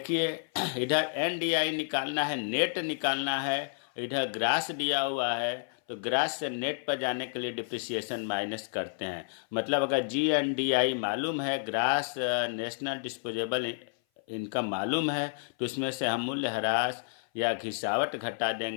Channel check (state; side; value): silent; right; 56 dB below the other